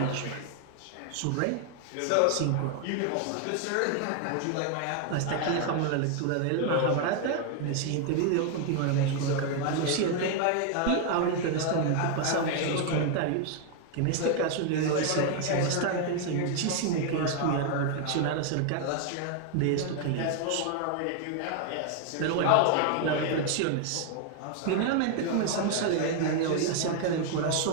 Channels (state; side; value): different; both; correlation 0.00